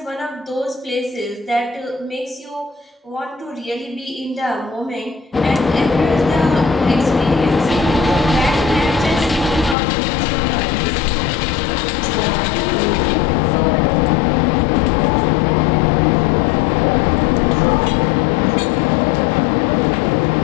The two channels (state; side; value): drops out; right; at 9.8 s